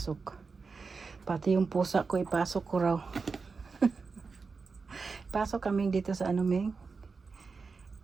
Pati yung pusa ko, ipasok ko raw. Pasok kami dito sa Ming.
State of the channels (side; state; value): left; quieter; 4.7 dB